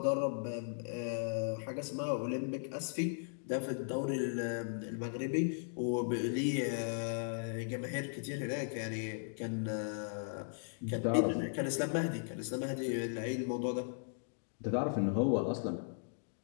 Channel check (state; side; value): silent; right; digital silence